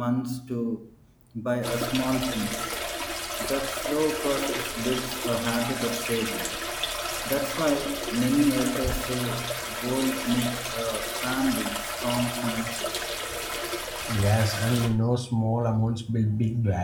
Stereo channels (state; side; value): identical; both; correlation 1.00